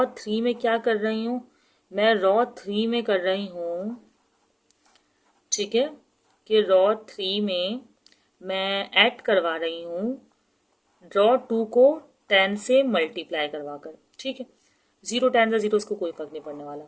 3 में क्या कर रही हूँ, मैं रॉ 3 में कर रही हूँ, ठीक है, कि रॉ 3 में मैं ऐड करवा रही हूँ रॉ 2 को 10 से मल्टीप्लाई करवा कर। ठीक है, 0 10 ज़ा 0, इसको कोई फर्क नहीं पड़ने वाला।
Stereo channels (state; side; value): identical; both; correlation 1.00